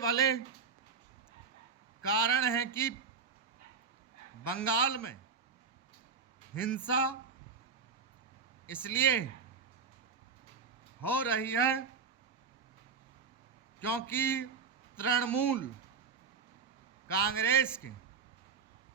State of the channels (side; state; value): left; quieter; 5.6 dB